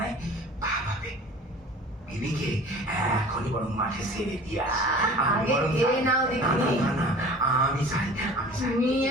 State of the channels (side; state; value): both; normal; correlation 0.43